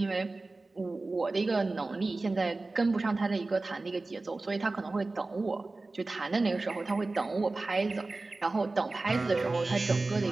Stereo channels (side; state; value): left; quieter; 3.3 dB